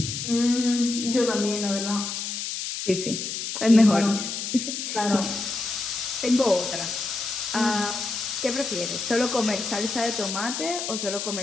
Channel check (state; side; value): noise; left; hiss, 4 dB below the sound